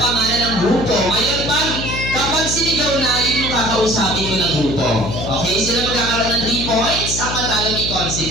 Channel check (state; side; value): noise; left; hum, 6 dB below the sound